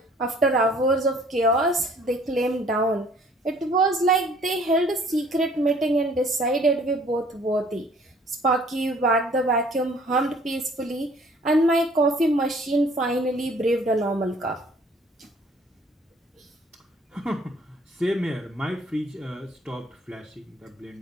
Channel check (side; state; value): both; normal; correlation 0.56